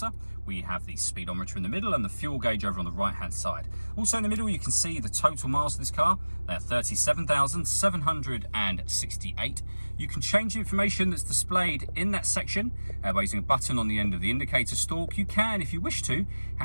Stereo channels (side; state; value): both; inverted; correlation -1.00